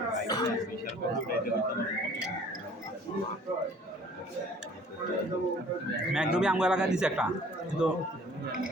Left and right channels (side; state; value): both; normal; correlation 0.53